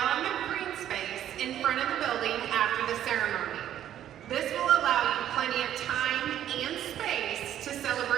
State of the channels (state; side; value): quieter; left; 11.2 dB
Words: on the green space in front of the building after the ceremony. This will allow you plenty of time and space to